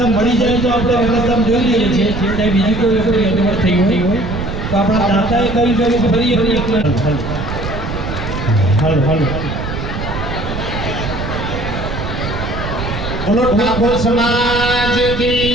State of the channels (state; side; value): noise; right; rumble, 5 dB below the sound